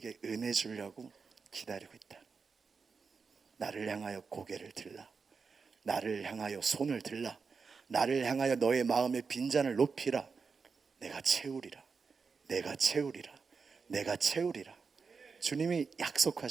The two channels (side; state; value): left; quieter; 5.1 dB